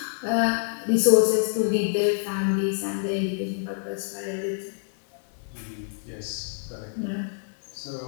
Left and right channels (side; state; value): right; silent; digital silence